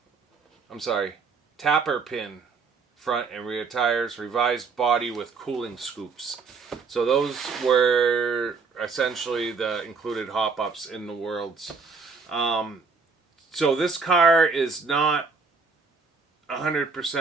Tapper pin front and rear tires, revised body with cooling scoops. So those were essentially the included hop-ups in the Worlds. So this car is not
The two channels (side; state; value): left; quieter; 4.8 dB